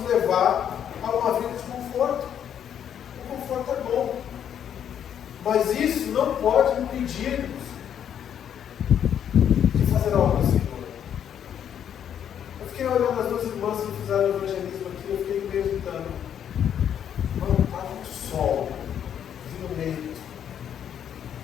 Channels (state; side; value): quieter; right; 9.2 dB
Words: levar a uma vida de conforto. O conforto é bom, mas isso não pode impedir-nos de fazer algo ao Senhor. Eu fiquei olhando as duas irmãs que fizeram o evangelismo aqui, eu fiquei meditando. Mano, está muito sol, vindo meio.